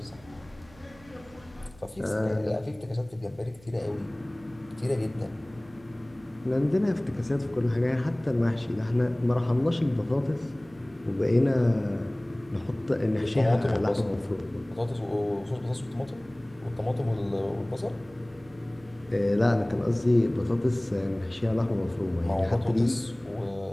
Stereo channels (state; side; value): noise; right; hum, 25 dB below the sound